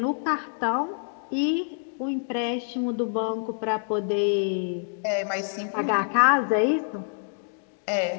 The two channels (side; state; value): right; silent; digital silence